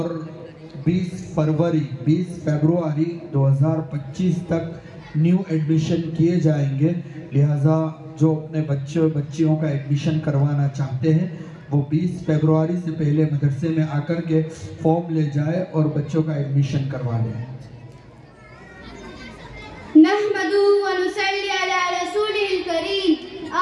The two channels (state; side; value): identical; both; correlation 1.00